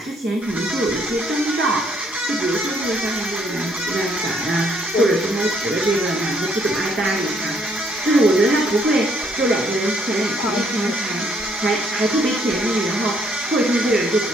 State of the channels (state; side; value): noise; left; hiss, 24 dB below the sound